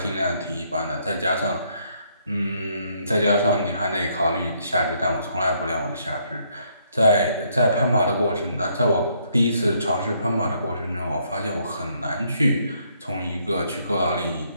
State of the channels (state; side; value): inverted; both; correlation -0.70